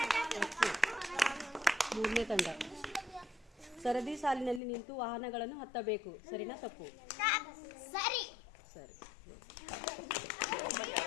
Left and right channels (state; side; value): drops out; right; at 4.6 s